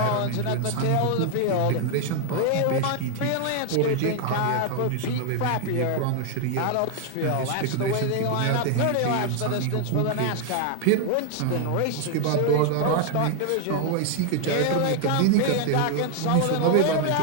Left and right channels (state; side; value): different; both; correlation 0.00